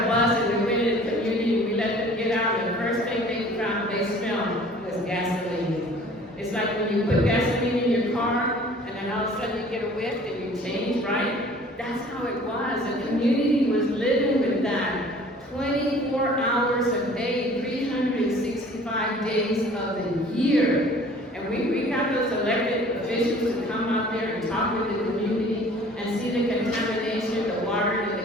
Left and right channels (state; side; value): normal; both; correlation 0.50